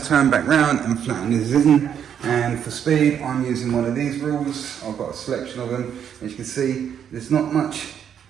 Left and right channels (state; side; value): quieter; left; 8.6 dB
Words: turn back round and flatten this in. And for speed, I'm using one of these rules. I've got a selection of them. As you can see, there's not much